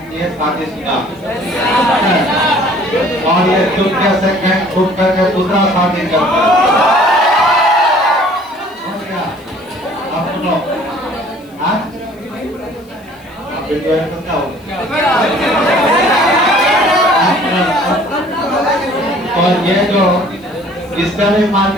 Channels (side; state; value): left; noise; hiss, 30 dB below the sound